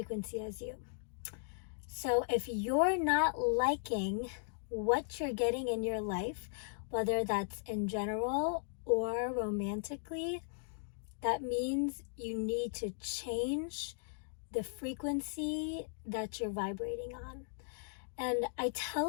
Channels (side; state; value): right; silent; digital silence